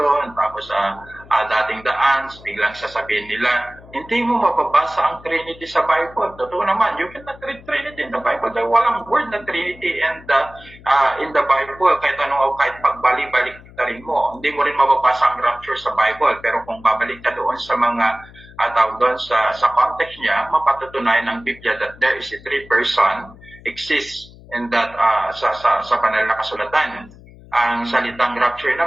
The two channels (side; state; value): left; noise; hum, 21 dB below the sound